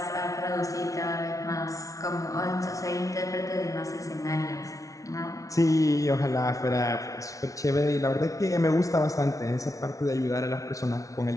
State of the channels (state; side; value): late; right; 0.17 ms